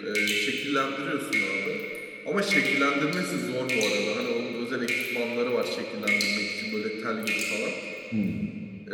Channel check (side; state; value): both; identical; correlation 1.00